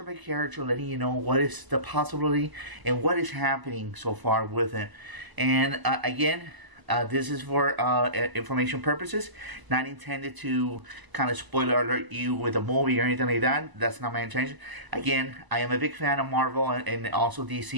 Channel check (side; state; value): left; late; 1.0 ms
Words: by character, letting you know what is the possibility and what is happening so far with him. And again, this is for information purposes, not intended to kind of spoiler alert you with a movie or anything like that. That's not my intention. Again, I am a big fan of Marvel and also